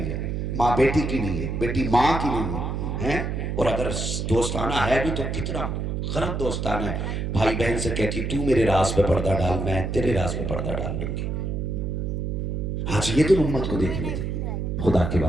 है, माँ बेटी की नहीं है, बेटी माँ की नहीं है, हैं? और अगर दोस्ताना है भी तो कितना गलत दोस्ताना है। भाई बहन से कहती तू मेरे राज पे पर्दा डाल, मैं तेरे राज पे पर्दा डाल दूंगी। आज ये तो उम्मत को देखने थे। खुदा के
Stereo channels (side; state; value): right; noise; hum, 2 dB below the sound